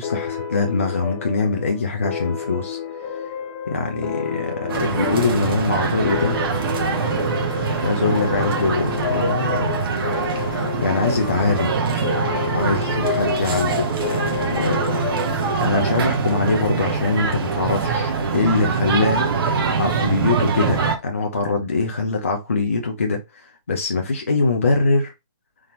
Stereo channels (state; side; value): inverted; both; correlation -0.51